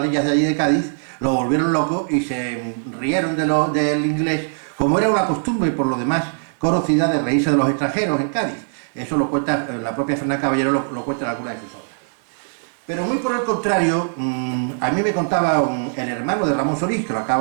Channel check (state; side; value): silent; left; 65 dB below the other